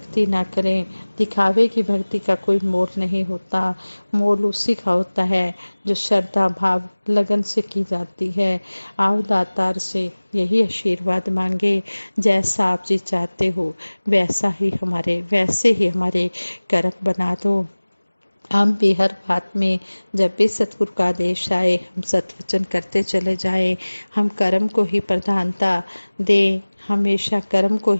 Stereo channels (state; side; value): inverted; both; correlation -1.00